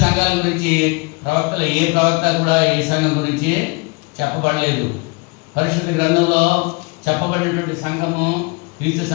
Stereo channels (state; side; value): quieter; right; 29.0 dB